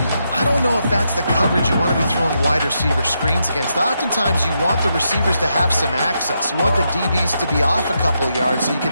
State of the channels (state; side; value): inverted; both; correlation -0.82